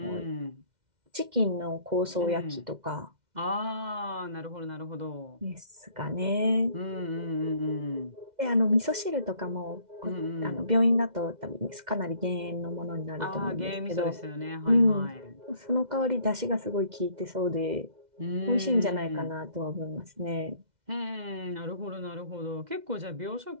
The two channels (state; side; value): late; left; 2.1 ms